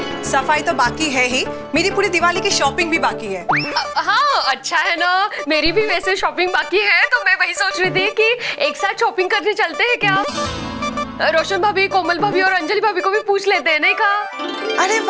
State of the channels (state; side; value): identical; both; correlation 1.00